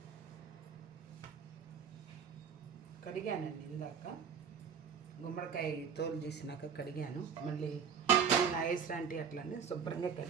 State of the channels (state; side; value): quieter; left; 7.0 dB